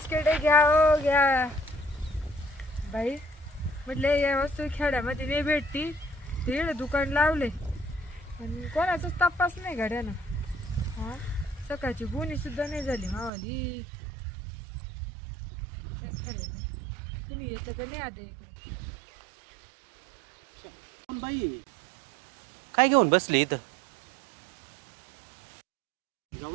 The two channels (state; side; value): drops out; left; at 13.3 s